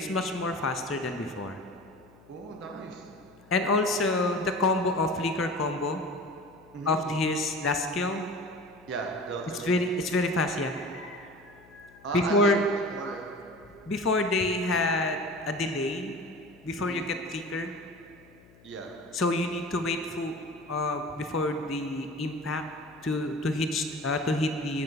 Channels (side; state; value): left; noise; hum, 26 dB below the sound